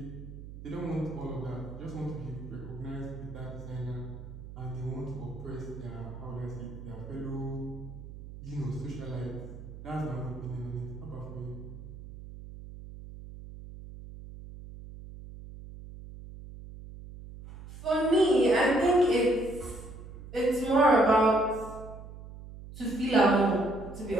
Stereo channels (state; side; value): noise; right; hum, 13 dB below the sound